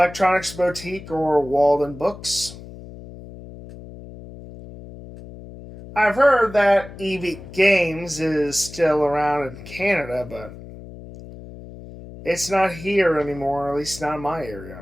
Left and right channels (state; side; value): noise; left; hum, 15 dB below the sound